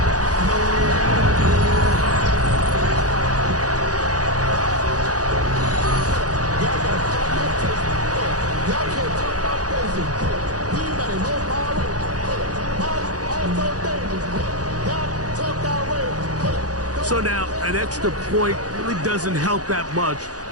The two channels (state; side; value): late; left; 0.67 ms